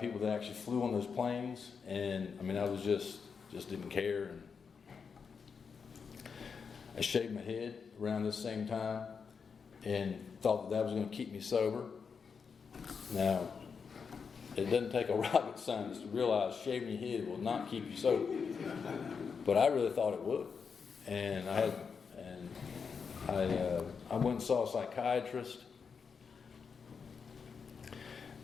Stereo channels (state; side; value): quieter; right; 5.9 dB